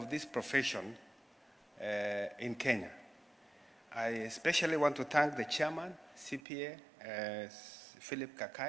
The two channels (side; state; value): left; drops out; at 6.4 s